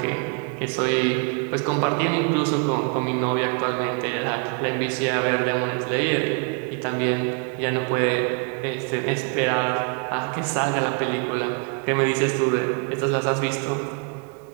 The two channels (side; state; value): left; quieter; 35.7 dB